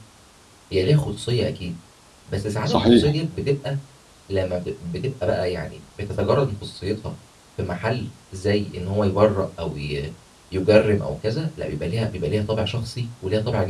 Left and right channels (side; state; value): both; identical; correlation 1.00